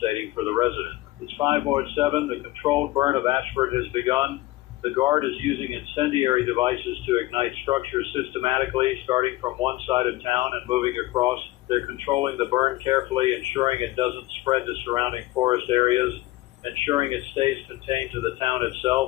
for the resident. It's 5:07. The controlled burn of Ashford has begun. The Guard is using incendiary devices to ignite structures systematically, starting from one side of town and moving across. They're controlling the burn carefully, ensuring it doesn't spread to surrounding forest areas, ensuring it stays contained to the town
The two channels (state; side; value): quieter; right; 17.7 dB